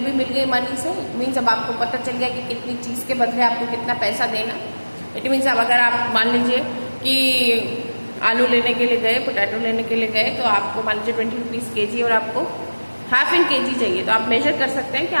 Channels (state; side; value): inverted; both; correlation -1.00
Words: भी मिल गई मनी से. इट मीन्स अब आपको पता चल गया कि कितनी चीज के बदले आपको कितना पैसा देना. इट मीन्स अब अगर आप मान लीजिए कि आलू लेने के लिए गए, पोटैटो लेने के लिए गए, तो आपको मान लीजिए 20 रुपीज केजी और आपको हाफ इन केजी चाहिए, तो आप मेजर कर सकते हैं कि